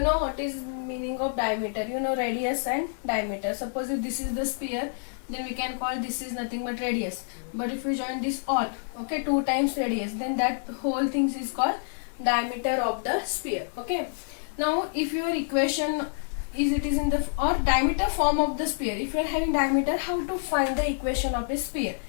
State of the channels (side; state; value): right; silent; digital silence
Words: know what is meaning of diameter. You know radius and diameter. Suppose if this is the sphere, then we can call this is nothing but radius. But if you join this all, okay, 2 times radius, then that whole thing is called diameter of the sphere. Okay. Now if your equation is it is in the or diameter form of the sphere, if you are having diameter, how to find the equation of a sphere?